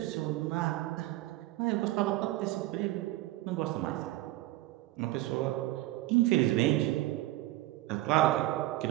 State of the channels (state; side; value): quieter; left; 17.2 dB